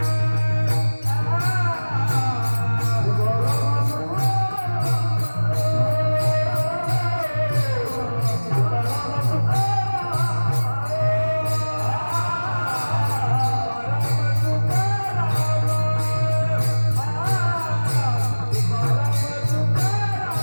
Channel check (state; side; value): inverted; both; correlation -1.00